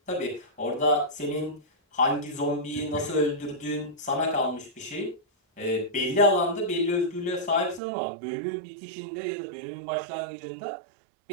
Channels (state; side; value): drops out; left; at 7.8 s